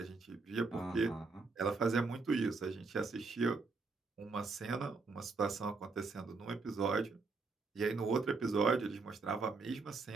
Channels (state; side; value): quieter; left; 4.1 dB